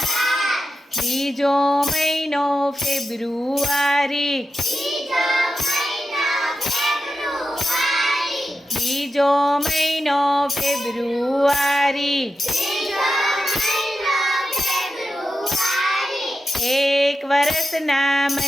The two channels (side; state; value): both; normal; correlation 0.90